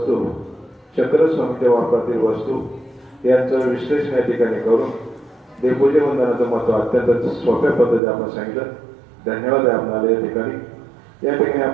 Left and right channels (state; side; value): drops out; left; at 8.0 s